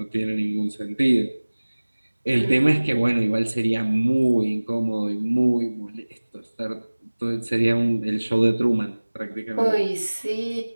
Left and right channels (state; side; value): inverted; both; correlation -1.00